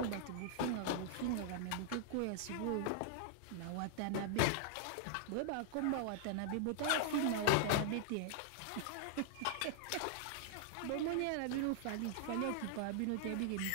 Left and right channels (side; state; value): both; different; correlation -0.01